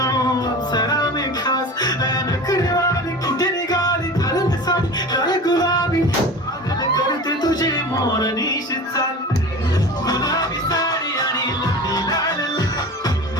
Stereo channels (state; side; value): normal; both; correlation 0.34